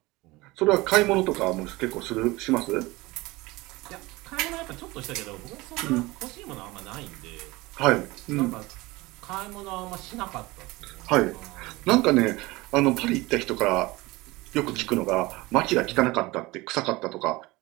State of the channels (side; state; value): left; quieter; 21.2 dB